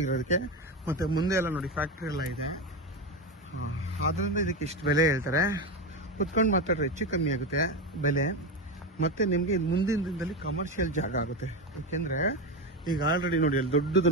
ಇರೋದಕ್ಕೆ. ಮತ್ತು ಮುಂದೆ ಎಲ್ಲ ನೋಡಿ ಫ್ಯಾಕ್ಟ್ರಿ ಎಲ್ಲ ಇದೆ, ಆದ್ದರಿಂದ ಇದಕ್ಕೆ ಇಷ್ಟು ಬೆಲೆ ಹೇಳ್ತಾರೆ. ಕುತ್ಕೊಂಡು ಮಾತಾಡ್ರೆ ಹೆಚ್ಚು ಕಮ್ಮಿ ಆಗುತ್ತೆ ಬೆಲೆ. ಮತ್ತು ನಿಮಗೆ ಮುಂದಿನ ದಿನದಲ್ಲಿ ಕಮರ್ಷಿಯಲ್ ಜಾಗ ಆಗುತ್ತೆ. ಯಾಕೆಂದರೆ ಈಗ ಆಲ್ರೆಡಿ ನೋಡಿ ಅಲ್ಲಿ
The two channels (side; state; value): both; normal; correlation 0.16